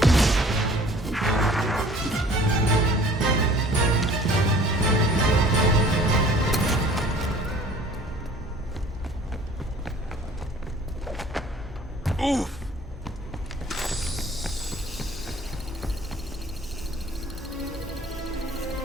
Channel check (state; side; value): normal; both; correlation 0.50